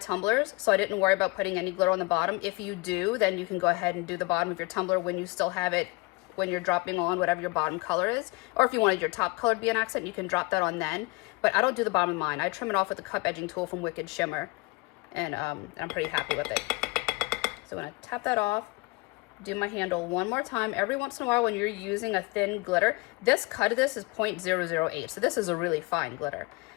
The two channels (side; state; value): right; quieter; 25.3 dB